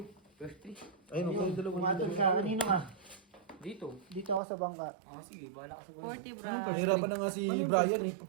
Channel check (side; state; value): left; drops out; at 4.4 s